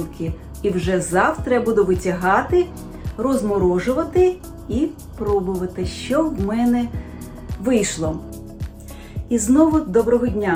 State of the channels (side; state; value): both; identical; correlation 1.00